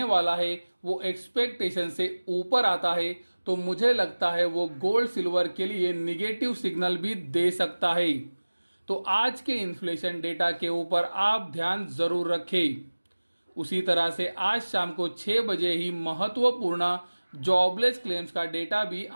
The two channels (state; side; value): inverted; both; correlation -1.00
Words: वाला है वो एक्सपेक्टेशन से ऊपर आता है तो मुझे लगता है वो गोल्ड सिल्वर के लिए निगेटिव सिग्नल भी दे सकता है। तो आज के इन्फ्लेशन डेटा के ऊपर आप ध्यान जरूर रखें। उसी तरह से आज शाम को 6 बजे ही महत्वपूर्ण जॉबलेस क्लेम्स का डेटा भी